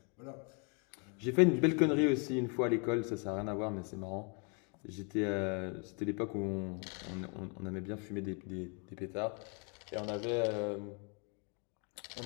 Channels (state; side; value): quieter; right; 35.8 dB